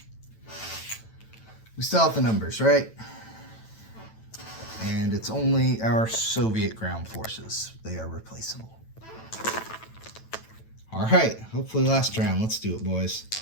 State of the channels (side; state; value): right; late; 9.1 ms